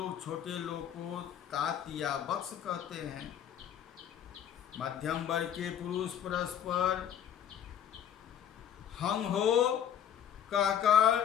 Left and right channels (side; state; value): right; quieter; 9.5 dB